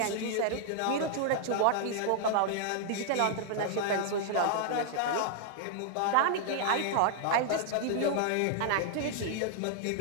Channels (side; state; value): both; different; correlation -0.01